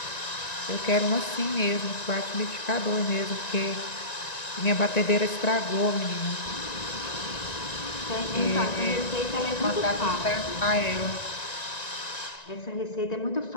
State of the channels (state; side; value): late; right; 1.9 ms